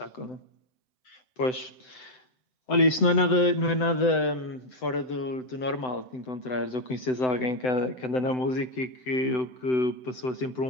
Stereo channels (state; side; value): late; right; 7.9 ms